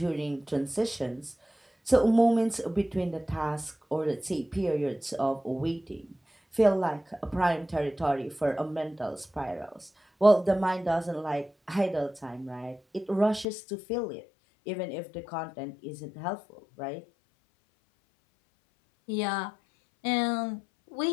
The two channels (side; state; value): right; drops out; at 13.5 s